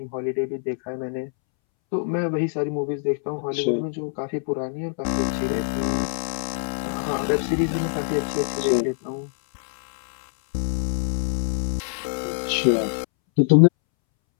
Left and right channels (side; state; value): right; silent; 62 dB below the other